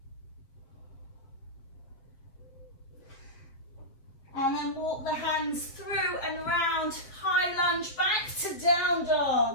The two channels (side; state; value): right; late; 7.3 ms